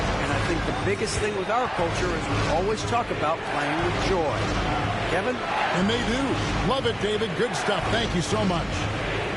I think the biggest thing with our culture is we always talk about playing with joy. Kevin? And they do. Love it, David. Good stuff. Thank you so much.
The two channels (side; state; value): both; identical; correlation 1.00